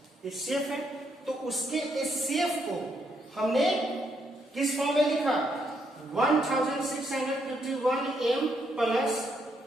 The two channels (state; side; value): normal; both; correlation 0.75